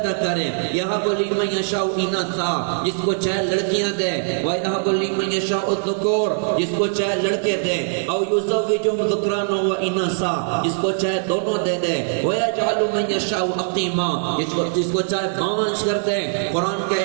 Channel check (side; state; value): left; silent; digital silence